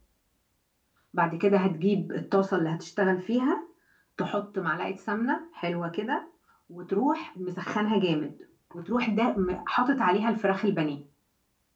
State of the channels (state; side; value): identical; both; correlation 1.00